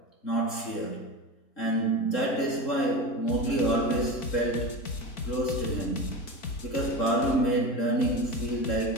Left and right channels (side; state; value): right; late; 3.7 ms